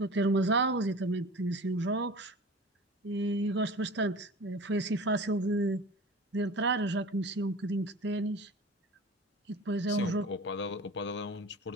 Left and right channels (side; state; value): both; normal; correlation 0.37